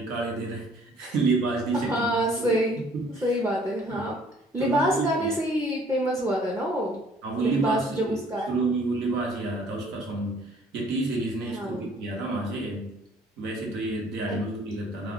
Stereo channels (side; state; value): both; normal; correlation 0.58